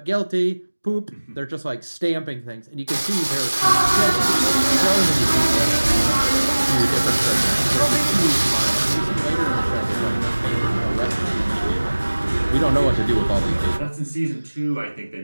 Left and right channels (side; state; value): both; inverted; correlation -1.00